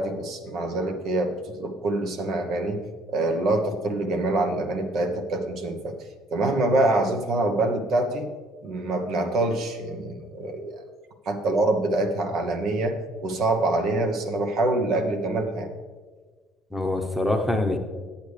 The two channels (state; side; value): normal; both; correlation 0.61